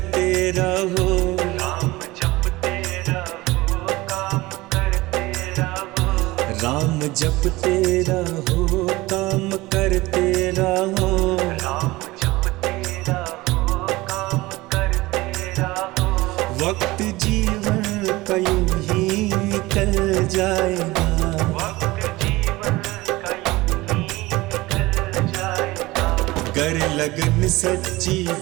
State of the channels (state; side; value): quieter; left; 20.1 dB